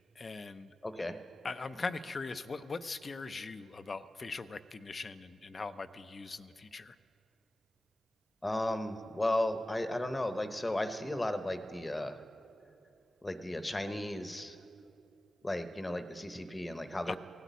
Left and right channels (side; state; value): both; normal; correlation 0.96